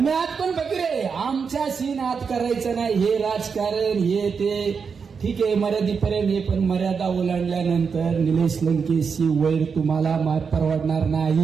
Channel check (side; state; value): left; quieter; 5.8 dB